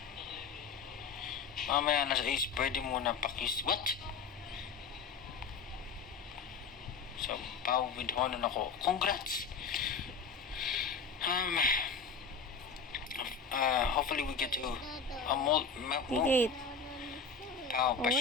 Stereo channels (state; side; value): quieter; right; 5.4 dB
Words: Mamaya na sa Ace, pwede muna pakis. What? So, Pau with honor ako. Congrats! Hopefully we get to Higit. Pau,